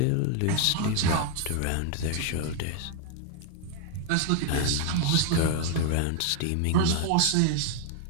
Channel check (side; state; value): both; different; correlation 0.00